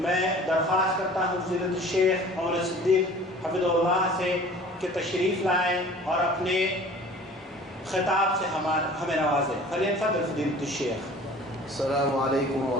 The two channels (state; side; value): normal; both; correlation 0.46